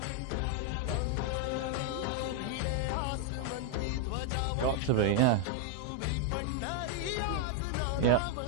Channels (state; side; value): different; both; correlation 0.00